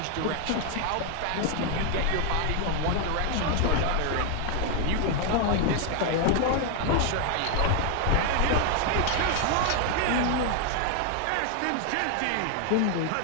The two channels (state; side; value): different; both; correlation 0.00